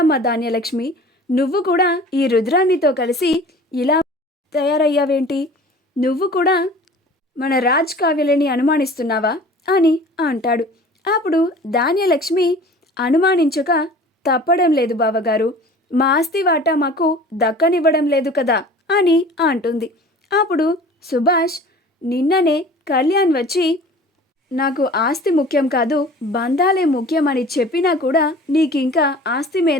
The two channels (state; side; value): normal; both; correlation 0.44